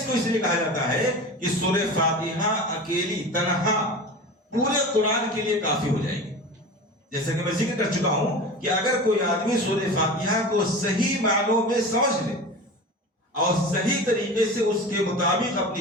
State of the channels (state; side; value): normal; both; correlation 0.32